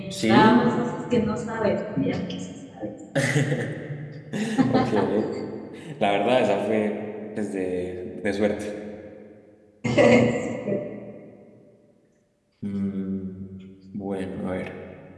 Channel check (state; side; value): identical; both; correlation 1.00